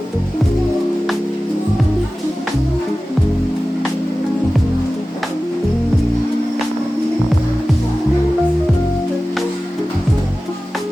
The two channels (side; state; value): both; normal; correlation 0.96